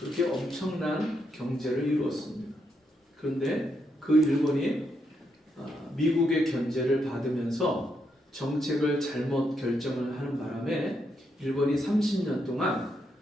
엄청난 경제를 이루었습니다. 그런데 그 일본이 미국의 견제를 받으면서 정책을 잘못 결정을 하는 바람에 일본이 30년 동안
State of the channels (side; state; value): both; normal; correlation 0.80